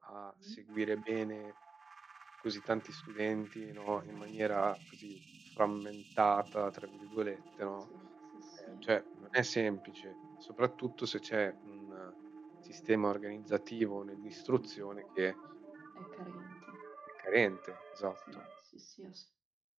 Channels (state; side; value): quieter; left; 4.5 dB